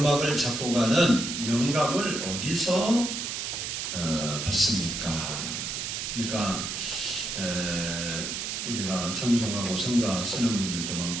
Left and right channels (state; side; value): noise; right; hiss, 4 dB below the sound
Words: 작곡하는 영감을 어디서 받습니까? 그러니까 우리가 찬송하고 성가 쓰는 분들도